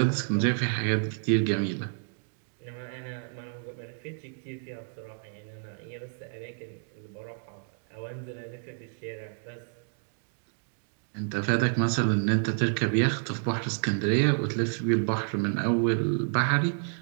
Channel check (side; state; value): left; silent; digital silence